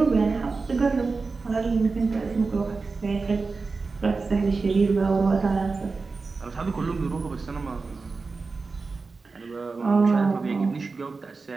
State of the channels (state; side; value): quieter; left; 4.2 dB